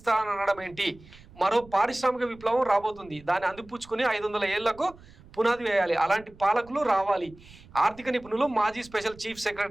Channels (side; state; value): right; noise; rumble, 23 dB below the sound